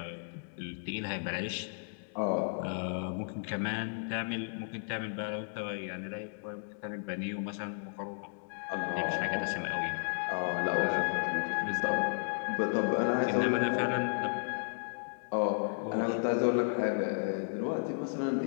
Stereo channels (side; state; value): right; silent; digital silence